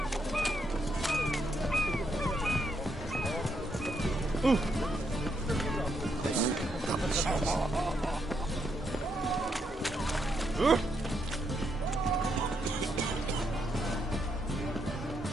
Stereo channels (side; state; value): both; normal; correlation 0.78